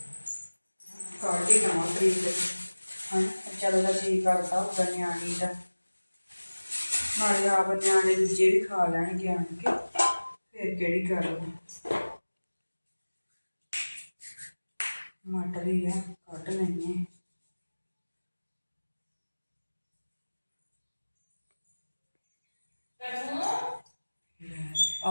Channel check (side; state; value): both; inverted; correlation -1.00